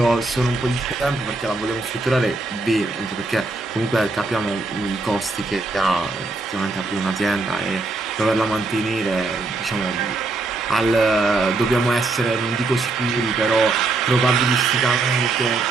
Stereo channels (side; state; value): left; quieter; 3.4 dB